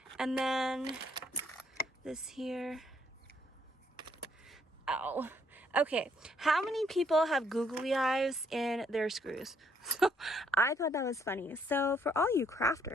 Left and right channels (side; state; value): both; normal; correlation 0.69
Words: And then this here. Ow. Okay, how many people have googly eyes in their screws? So I thought that was funny. So for all you